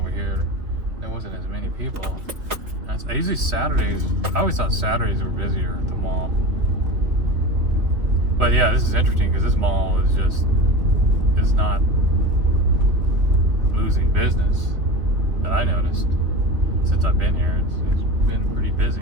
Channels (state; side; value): late; left; 2.9 ms